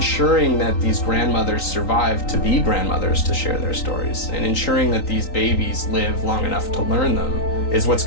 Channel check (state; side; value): late; right; 3.9 ms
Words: that these grandmothers survive to be grandmothers to share their stories, and ensuring that these babies live long enough to learn them is what's